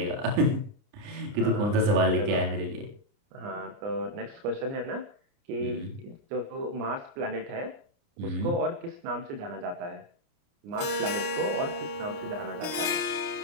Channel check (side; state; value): left; late; 28 ms